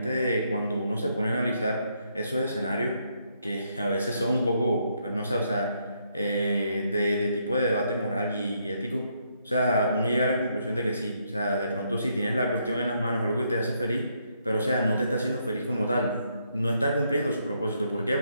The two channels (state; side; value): inverted; both; correlation -0.75